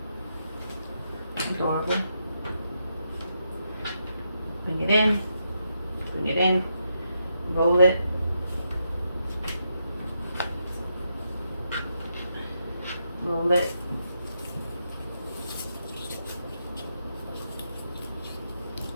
Adorable. Bring it in. Bring it in. Roll it. Roll it.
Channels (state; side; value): inverted; both; correlation -0.82